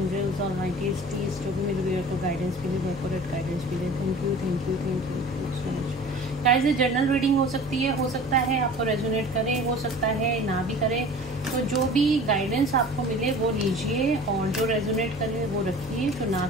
और माइटीज जो भी मेरे व्यूअर को गाइडेंस मिले, वो एक्यूरेट गाइडेंस मिले। Thank you thank you thank you so much guys. ये जर्नल रीडिंग हो सकती है, हो सकता है आपको रेजोनेट करे, हो सकता है ना भी करे। तो जो भी गाइडेंस आपको मिले वो लीजिए, और जो रेजोनेट करे वो रखिए, जो ना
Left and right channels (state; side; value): normal; both; correlation 0.42